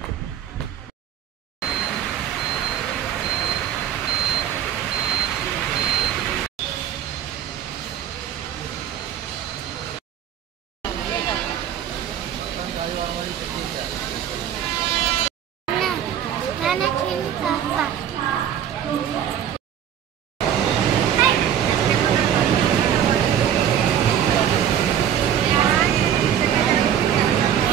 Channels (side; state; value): left; quieter; 9.7 dB